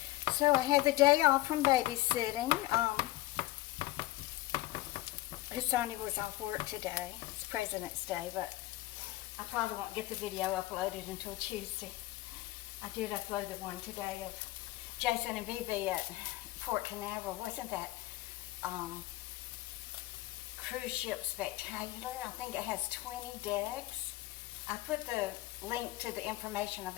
So I had the day off from babysitting. Sonny was off work today. It's President's Day, but I probably won't get the video uploaded until Tuesday. I did upload the one today of Jason and Bibi at Port Canaveral. Wasn't that cruise ship spectacular? I think it has 20 decks. I put the link to the information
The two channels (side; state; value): right; quieter; 17.9 dB